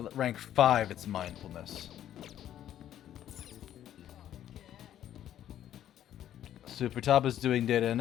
rank 5 it's mindfulness. So Futaba's doing data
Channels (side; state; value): right; quieter; 11.3 dB